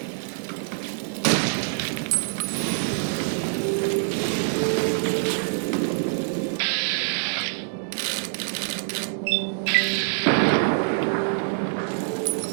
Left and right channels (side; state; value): left; silent; digital silence